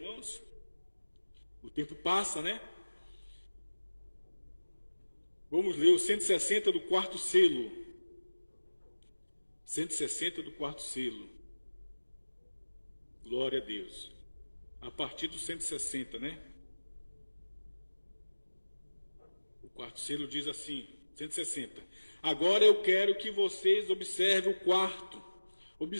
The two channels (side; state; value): both; inverted; correlation -1.00